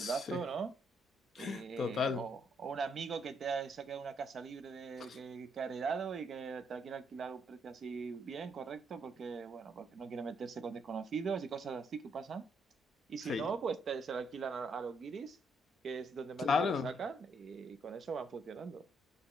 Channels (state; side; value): normal; both; correlation 0.73